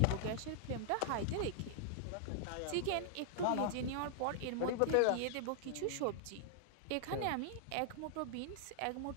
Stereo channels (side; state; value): both; different; correlation -0.01